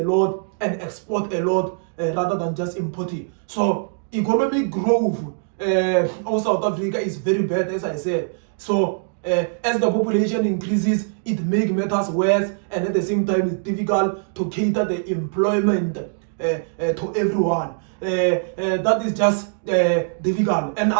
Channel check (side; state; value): left; silent; digital silence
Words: and export a lot rather than just importing. So economic growth of South Africa is very bad, as I said. So as the population increases, it makes matters worse, and at the same time it's difficult to cater the employment to everyone. That is just difficult. And